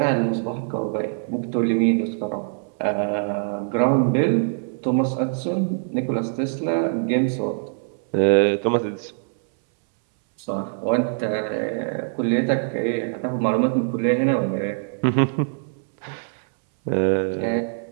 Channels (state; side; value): silent; left; 63 dB below the other